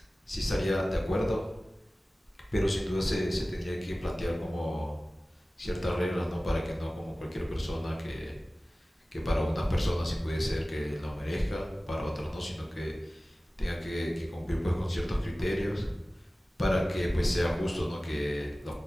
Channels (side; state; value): both; normal; correlation 0.97